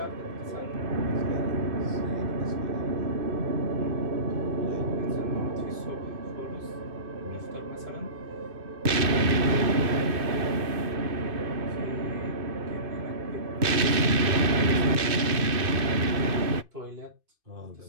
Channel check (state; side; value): late; left; 2.6 ms